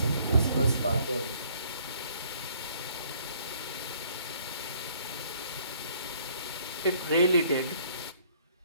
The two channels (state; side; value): inverted; both; correlation -0.62